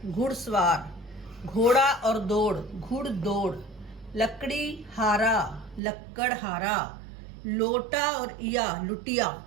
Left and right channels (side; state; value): left; drops out; at 5.8 s